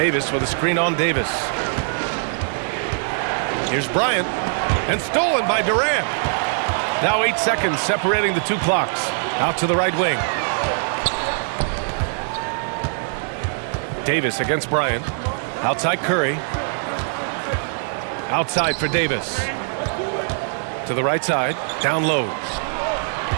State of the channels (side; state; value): left; silent; 64 dB below the other